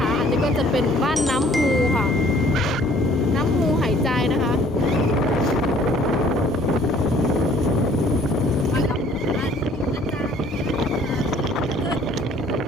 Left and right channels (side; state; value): both; normal; correlation 0.57